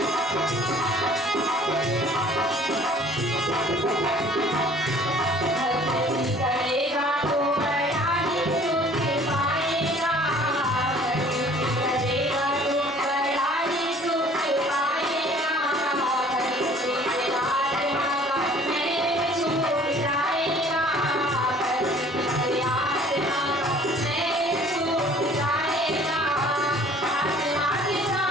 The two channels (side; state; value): both; normal; correlation 0.53